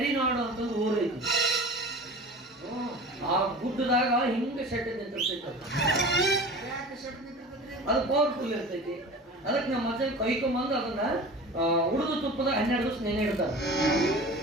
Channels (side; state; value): both; normal; correlation 0.37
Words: ಅಂತ ಒಂದು ಊರು ಐತಿ ಆ ಗುಡ್ಡದಾಗ ಹಿಂಗ ಶೆಡ್ ನಿಂತಿರ್ತೈತಿ ಅದು ಪವರ್ಫುಲ್ ಇರ್ತೈತಿ ಅದಕ್ಕೆ ನಮ್ಮ ಮಚ್ಚ ಕೈಕೊಂಬಂದು ಅದನ್ನ ಉಳಿದು ತುಪ್ಪದಾಗ 12 ದಿವಸ ನೆನೆ ಇಡ್ತಾರ